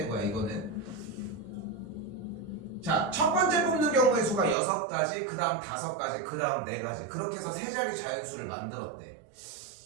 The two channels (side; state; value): left; drops out; at 4.5 s